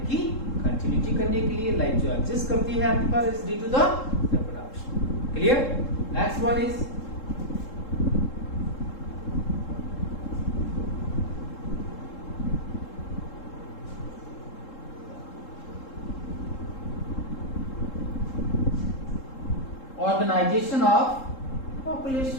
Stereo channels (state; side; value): late; right; 3.7 ms